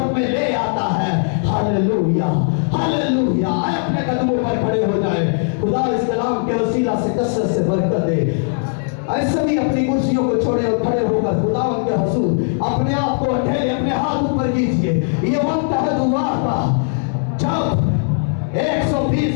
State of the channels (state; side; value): silent; right; digital silence